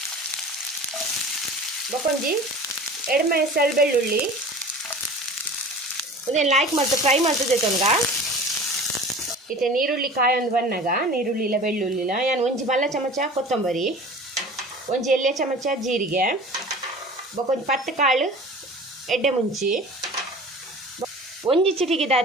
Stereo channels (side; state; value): both; normal; correlation 0.40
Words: ಬೊಕೊಂಜಿ ಎಡಮೆ ಸೆಳ್ ಬೆಳ್ಳುಳ್ಳಿ ಉದೇನು ಲೈಕ್ ಮತ್ತು ಫ್ರೈ ಮಾಡ್ತದೆ ತೊಂಗ ಇತ್ತೆ ನೀರುಳ್ಳಿ ಕಾಯೊಂದು ಬನ್ನಾಗ ನೀರುಳ್ಳಿ ಇಲ್ಲ ಬೆಳ್ಳುಳ್ಳಿ ಇಲ್ಲ ಯಾನು ಒಂಜಿ ಮಲ್ಲ ಚಮಚ ಕೊತ್ತಂಬರಿ ಒಂಜಿ ಎಲ್ಲೆ ಚಮಚ ಜೀರಿಗೆ ಬೊಕೊಂಜಿ ಪತ್ತು ಕಾಳು ಎಡ್ಡೆ ಮುಂಚಿ ಒಂಜಿ